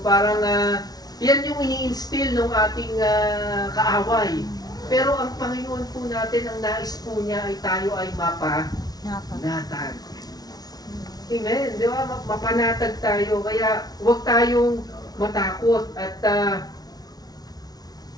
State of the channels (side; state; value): right; late; 0.19 ms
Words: parang, yan yung ini-instill ng ating kaaway. Pero ang Panginoon po natin, ang nais po niya ay tayo ay mapanatag. Amen. Di ba? Mapanatag tayo. Kaya huwag tayong matakot. At